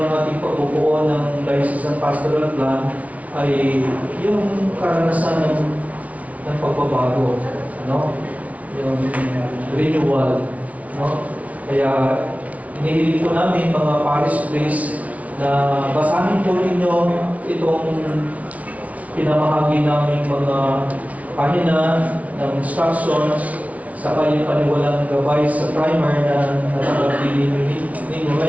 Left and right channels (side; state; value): left; late; 0.068 ms